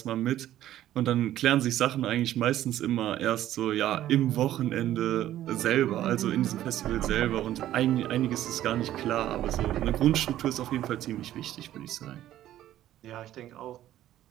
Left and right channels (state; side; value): quieter; left; 12.9 dB